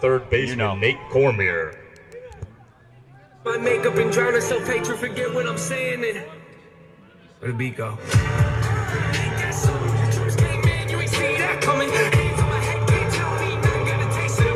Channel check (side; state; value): both; identical; correlation 1.00